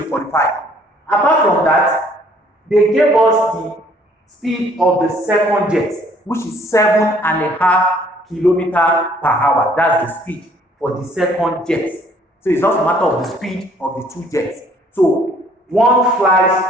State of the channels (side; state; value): both; normal; correlation 0.60